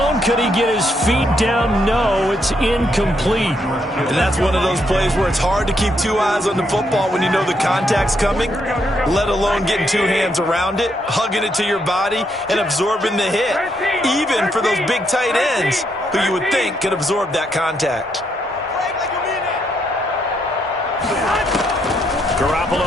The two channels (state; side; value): normal; both; correlation 0.76